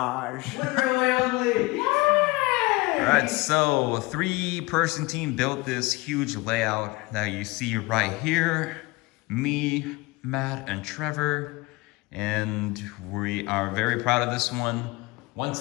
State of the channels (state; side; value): quieter; right; 23.0 dB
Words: WoodenRailwayOnly. Yay! Alright, so a 3-person team built this huge layout that you see right here. Me, Matt, and Trevor. And we are very proud of this one.